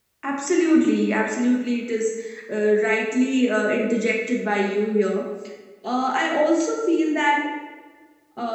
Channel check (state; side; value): identical; both; correlation 1.00